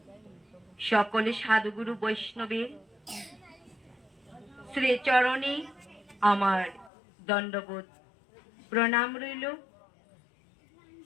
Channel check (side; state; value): right; drops out; at 6.9 s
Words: সকলে সাধুগুরু বৈষ্ণবের শ্রীচরণে আমার দণ্ডবোধ প্রণাম রইল।